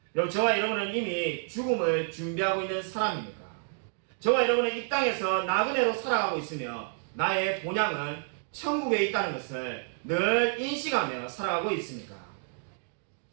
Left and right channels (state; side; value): silent; left; 58 dB below the other